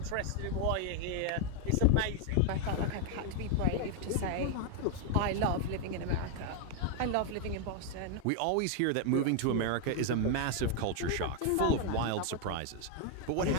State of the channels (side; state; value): both; different; correlation 0.01